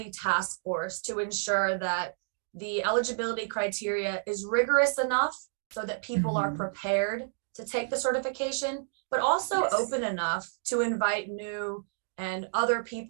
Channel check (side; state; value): left; silent; digital silence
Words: task force to ensure that the eligibility criteria is rigorous enough so that people are prepared to take the certification, but also open enough to invite new and other